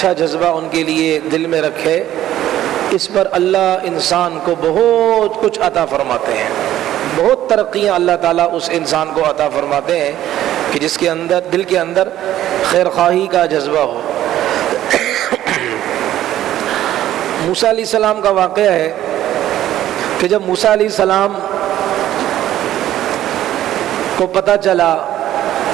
جذبہ ان کے لیے دل میں رکھے، اس پر اللہ انسان کو بہت کچھ عطا فرماتے ہیں، بہت ترقیاں اللہ تعالیٰ اس انسان کو عطا فرماتے ہیں کہ جس کے اندر دل کے اندر خیر خواہی کا جذبہ ہو۔ موسیٰ علیہ السلام کا واقعہ ہے کہ جب موسیٰ علیہ السلام کو پتہ چلا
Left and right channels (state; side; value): quieter; left; 12.9 dB